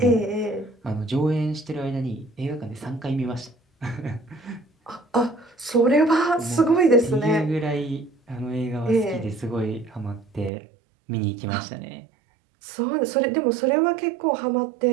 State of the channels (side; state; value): left; drops out; at 10.5 s